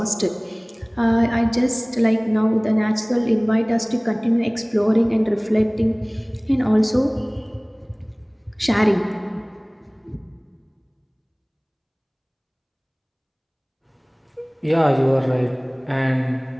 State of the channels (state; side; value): identical; both; correlation 1.00